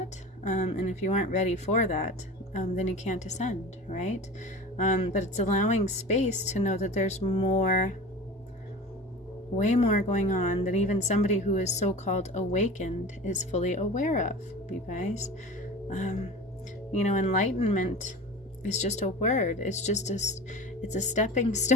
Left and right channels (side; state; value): both; normal; correlation 0.34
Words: And if you aren't ready for that, then you can't ascend, right? But it's allowing space to know that there's more, way more going on than even somebody who is so-called awakened is fully aware of, you guys. Enlightenment is just a word. It's a stepping